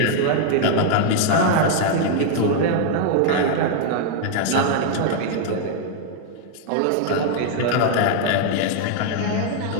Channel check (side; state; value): both; different; correlation 0.00